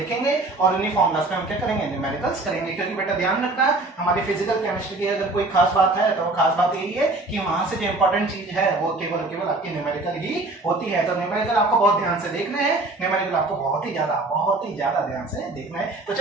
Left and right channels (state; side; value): quieter; left; 3.0 dB